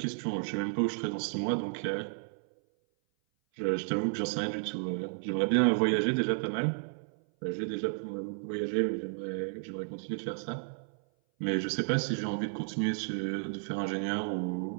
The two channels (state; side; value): silent; left; 56 dB below the other